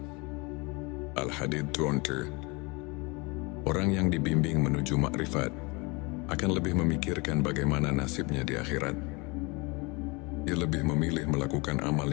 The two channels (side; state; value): right; quieter; 27.7 dB